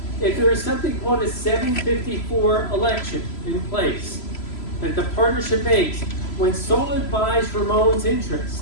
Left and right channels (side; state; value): right; late; 3.0 ms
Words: If there is something called a 754 election in place that the partnership makes, when Solid buys Ramon's